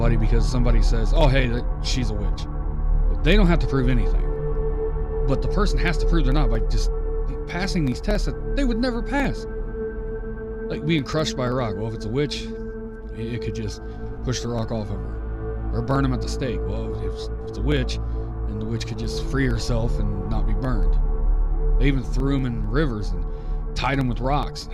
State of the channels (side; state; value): both; identical; correlation 1.00